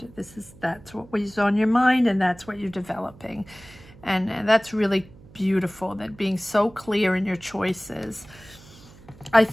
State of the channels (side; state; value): right; noise; hum, 22 dB below the sound